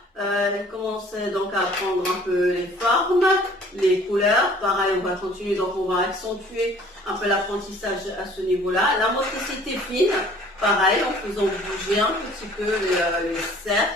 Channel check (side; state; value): both; normal; correlation 0.53